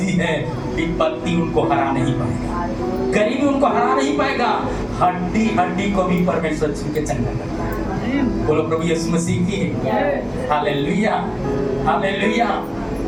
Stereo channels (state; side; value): identical; both; correlation 1.00